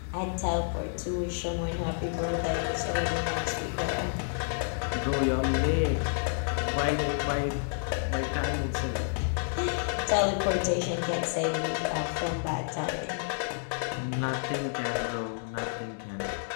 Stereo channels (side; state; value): right; silent; digital silence